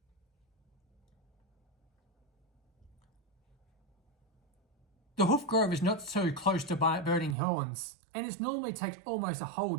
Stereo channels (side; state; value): left; drops out; at 7.4 s